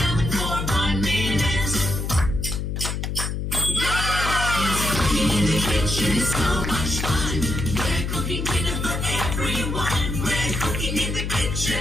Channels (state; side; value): noise; left; hum, 3 dB below the sound